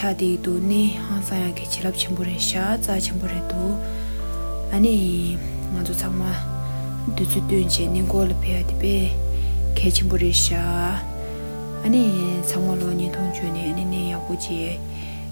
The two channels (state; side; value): inverted; both; correlation -1.00